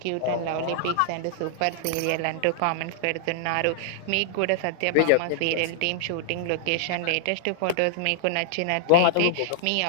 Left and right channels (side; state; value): both; different; correlation -0.01